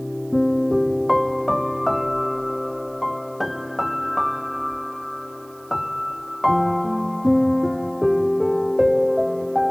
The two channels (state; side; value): noise; right; hiss, 27 dB below the sound